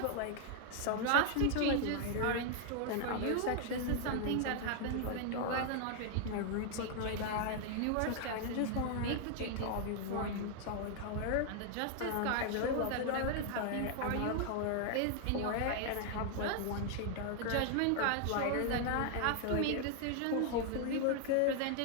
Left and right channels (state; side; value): different; both; correlation 0.00